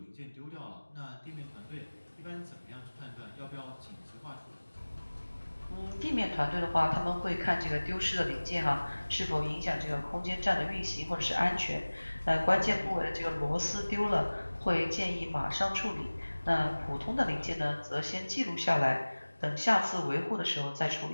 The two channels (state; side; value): inverted; both; correlation -1.00